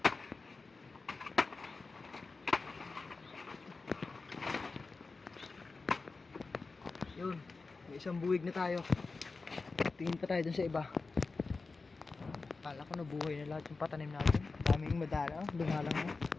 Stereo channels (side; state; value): right; quieter; 4.0 dB